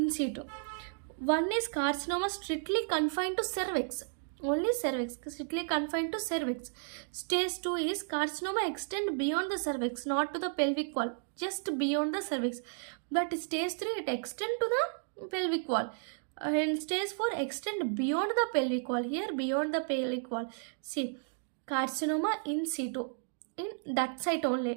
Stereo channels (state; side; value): silent; left; digital silence